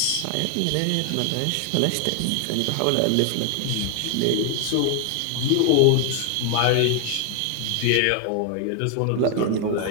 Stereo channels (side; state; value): both; different; correlation 0.00